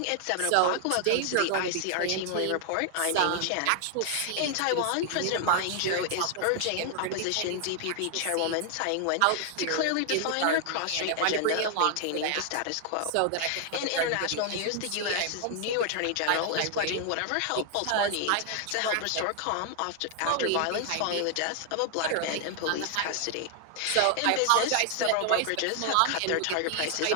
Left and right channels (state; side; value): different; both; correlation 0.00